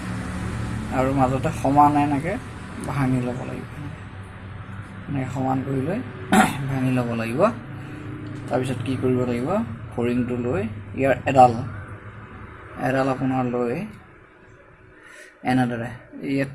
আৰু মাজতে সমান এনেকৈ ভাঙি ল'ব লাগিব এনেকৈ সমান কৰি লৈ ভাঙি ল'ব লাগিব তাৰপিছত কি কৰিব লাগিব ফৰিংটো লৈ ইয়াৰ এডাল আপোনাৰ লৈ এনেদৰে ইয়াত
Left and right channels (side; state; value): both; identical; correlation 1.00